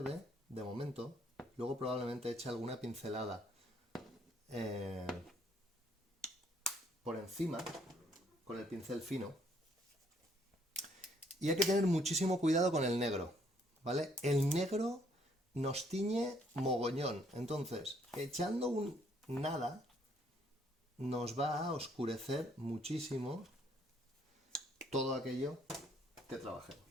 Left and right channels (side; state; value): both; normal; correlation 0.67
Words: de momento. Luego probablemente eche alguna pincelada por encima, con el pincel fino. Y hay que tener muchísimo cuidado con el negro, ¿vale? El negro nos tiñe mogollón. Entonces, echando un nada, nos va a oscurecer muchísimo todo aquello que trabajemos.